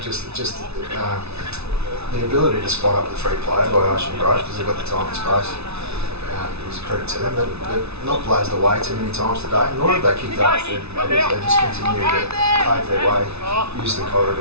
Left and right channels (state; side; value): late; left; 0.80 ms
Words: just the ability to spot up the free player by Ocean Grove because they've got the time and space. It was a credit to them, but they've not blazed away too many times today, nor have they kicked up 30 metres. They just continue to pave their way, use the